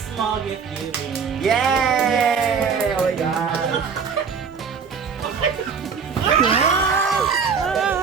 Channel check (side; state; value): left; quieter; 6.0 dB